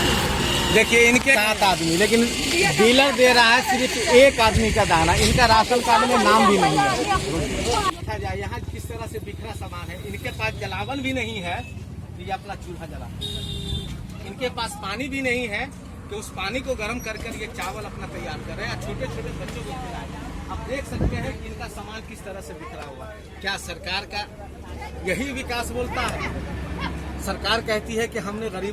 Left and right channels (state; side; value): identical; both; correlation 1.00